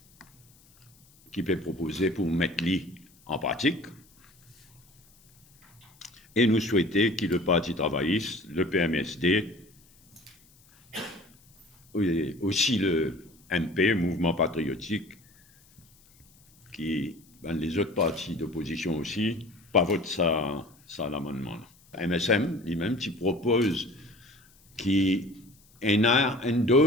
qui peut proposer pour mettre l'I en pratique. Et nous souhaitons que le Parti travailliste, le PMSD, aussi le MP, Mouvement patriotique, qui, les autres partis d'opposition aussi, pas votent ça l'amendement. MSM, lui-même, qui propose qu'il y ait une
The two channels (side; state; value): left; noise; hiss, 29 dB below the sound